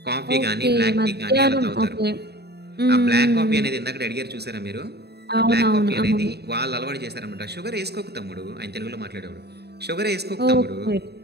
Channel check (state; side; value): late; left; 0.48 ms